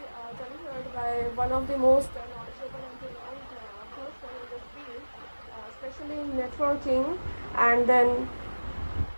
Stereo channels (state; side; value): inverted; both; correlation -1.00